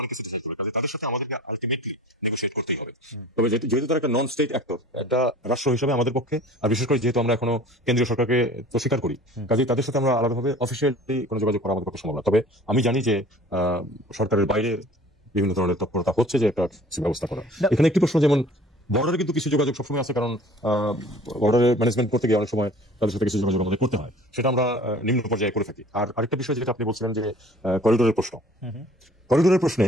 অনেক কিছু ডিসাইড করবে। কাজে তাদের সাথে আমাদেরকে আলটিমেটলি নেগোশিয়েট করতেই হবে। তবে যেহেতু তারা একটা নন স্টেট অ্যাক্টর, একটা রাষ্ট্র হিসেবে আমাদের পক্ষে, আর বিশেষ করে যেহেতু আমরা এখনো কেন্দ্রীয় সরকারকে তো স্বীকার করি, কাজে তাদের সাথে আমরা আলাদাভাবে অফিসিয়ালি কোনো যোগাযোগ করা আমাদের পক্ষে সম্ভব না। তবে আমি জানি যে সরকারের বাইরে বিভিন্ন ধরনের তৎপরতা হচ্ছে যে একটা ব্যবস্থা করা। এখানে একটি প্রশ্ন, যেমন বর্ডারে কিন্তু কিছু যোগাযোগ সবসময় আছে, কারণ বর্ডারে ম্যানেজমেন্ট করতে গিয়ে অনেক সময় তাদের সাথে কিছু যোগাযোগ আমাদের করতে হয়, সেটা আমরা নিম্ন পর্যায়ে করে থাকি। আর আরেকটা বিষয় যেটা আপনি বলছিলেন যে করিডোরের প্রশ্নে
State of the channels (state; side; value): normal; both; correlation 0.47